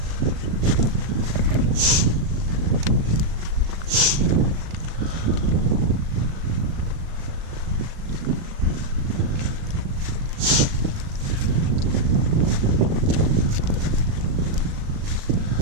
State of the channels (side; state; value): left; late; 37 ms